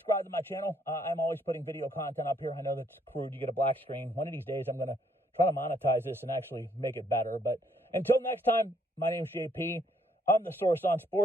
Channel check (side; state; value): both; normal; correlation 0.69